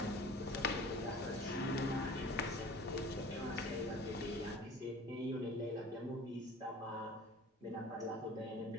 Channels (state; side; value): normal; both; correlation 0.43